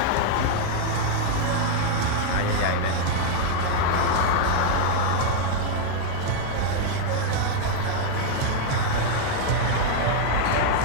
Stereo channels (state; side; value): different; both; correlation 0.00